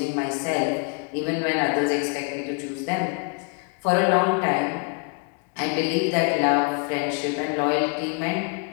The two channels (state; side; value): quieter; right; 36.7 dB